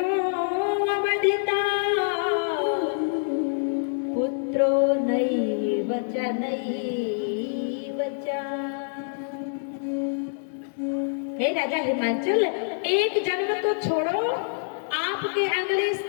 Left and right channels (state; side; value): silent; right; digital silence